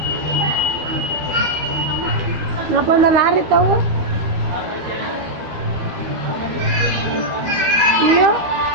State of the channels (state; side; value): late; left; 12 ms